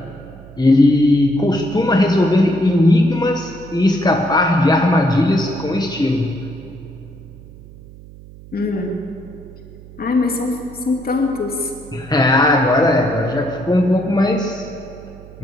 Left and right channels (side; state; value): right; noise; hum, 19 dB below the sound